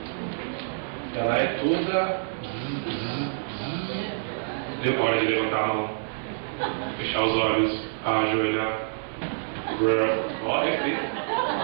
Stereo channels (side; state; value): left; silent; 57 dB below the other